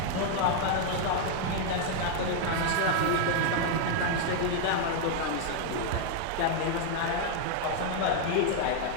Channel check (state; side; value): different; both; correlation 0.00